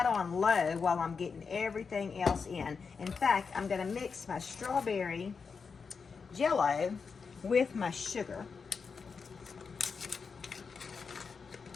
on low while I'm getting everything else in. In fact, I'm going to mix my strawberry Jello with my sugar.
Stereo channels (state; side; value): quieter; right; 5.4 dB